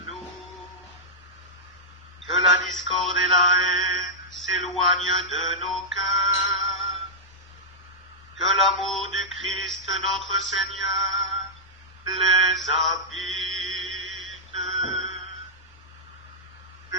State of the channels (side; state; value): both; normal; correlation -0.09